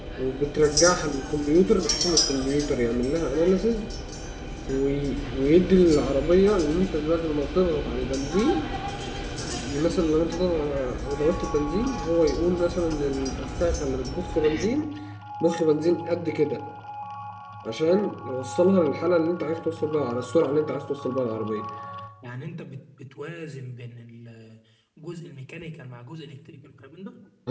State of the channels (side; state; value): both; identical; correlation 1.00